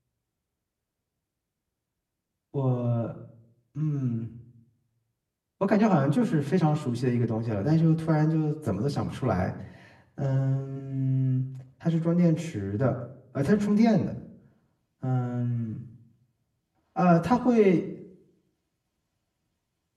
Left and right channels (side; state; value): both; identical; correlation 1.00